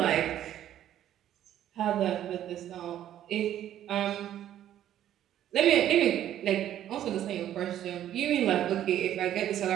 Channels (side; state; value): left; quieter; 11.6 dB